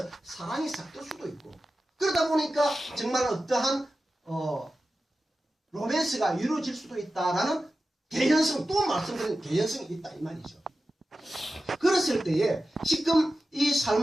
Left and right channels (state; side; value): normal; both; correlation 0.93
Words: 사랑이 싹들 수도 있고, 그러다 보니까 정말 어떠한 로맨스가 이루어질 수도 있다라는 개연성, 또 말씀드린 개연성이 있다 이 말이죠. 그랬을 때에 지금 이